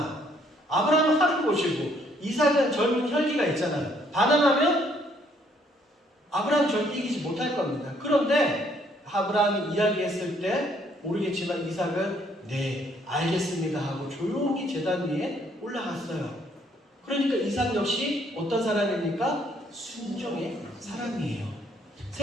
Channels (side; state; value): both; normal; correlation 0.66